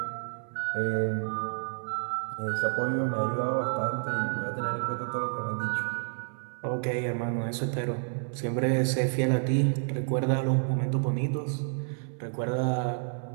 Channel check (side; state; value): left; silent; 58 dB below the other